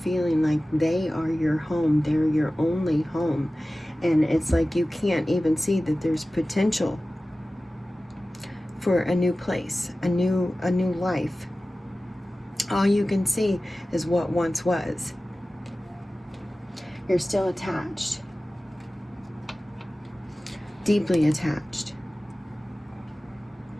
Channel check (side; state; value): both; normal; correlation 0.96